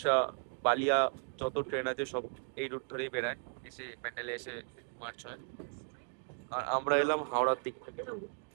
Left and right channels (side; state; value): left; silent; 54 dB below the other